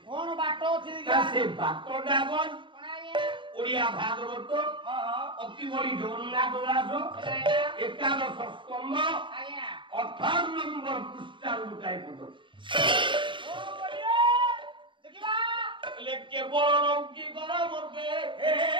কোন বাট ଅଛି ସେ ବାଟଟା କଣ ଓଡ଼ିଆ ଭାଗବତ ଅତି ବଡ଼ି ଜଗନ୍ନାଥ ଦାସ ଏକାଦଶ ସ୍କନ୍ଧ 18 ନମ୍ବର ପୃଷ୍ଠାରୁ ଗୋଟାଏ ପଦ କେବଳ ରଙ୍କି କର ମୋତେ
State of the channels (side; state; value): left; late; 0.24 ms